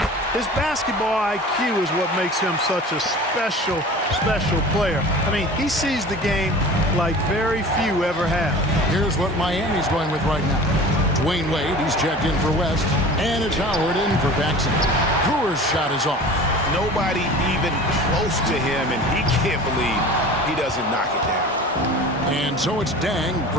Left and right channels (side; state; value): both; normal; correlation 0.39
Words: his basketball IQ is what makes him such a special player. I mean, he sees the game like very few ever have. Here's what Miami's going with right now. Dwayne Wade, he's checked in for West, and it's Howard in for Paxson. Brewer's shot is off. Nobody even close to him, and he can't believe he doesn't knock it down. And so it's Dang